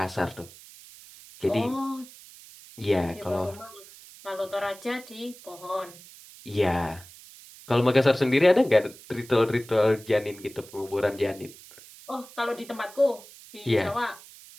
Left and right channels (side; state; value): right; noise; hiss, 20 dB below the sound